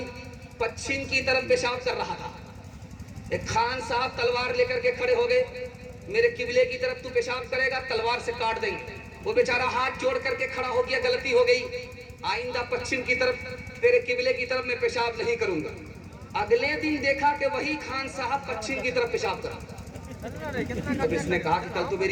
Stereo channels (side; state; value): both; identical; correlation 1.00